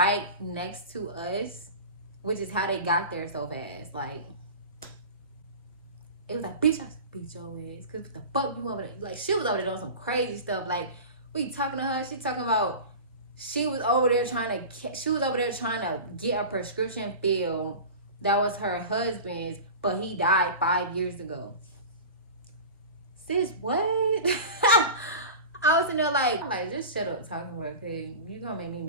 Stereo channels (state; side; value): inverted; both; correlation -0.32